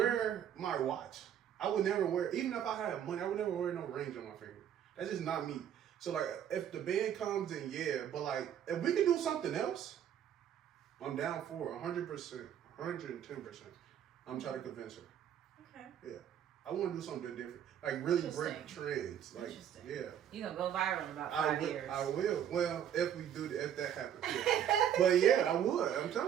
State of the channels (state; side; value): quieter; left; 9.7 dB